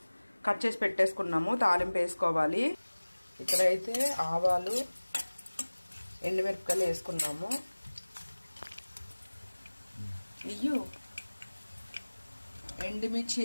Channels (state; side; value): inverted; both; correlation -1.00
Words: కట్ చేసి పెట్టేసుకున్నాము. తాలింపు వేసుకోవాలి. ఇక్కడైతే ఆవాలు, ఎండుమిరపకాయలు వేసుకున్నాము. ఎండుమిర్చి